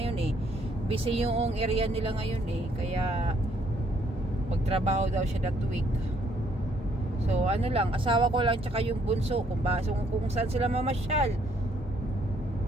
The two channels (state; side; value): normal; both; correlation 0.67